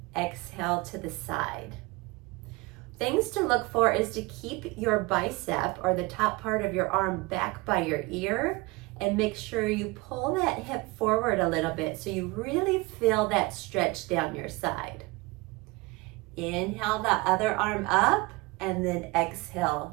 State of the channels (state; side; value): quieter; left; 24.1 dB